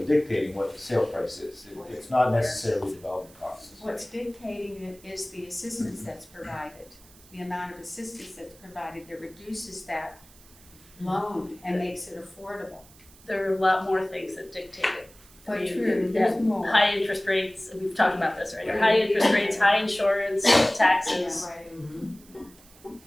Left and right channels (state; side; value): noise; right; hiss, 24 dB below the sound